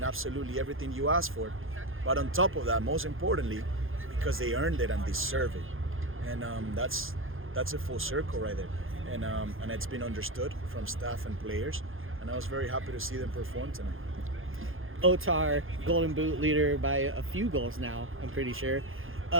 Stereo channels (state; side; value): late; left; 0.60 ms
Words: absolutely everything you asked for. But on top of that, most importantly, because they earned it and deserve it, and that's a full circle right there. And it's been understood from staff and players, and I was very happy to see them perform tonight. Otar, Golden Boot leader by a few goals now, I'm pretty sure.